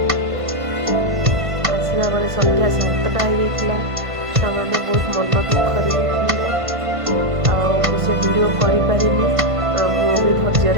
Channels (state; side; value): late; left; 1.5 ms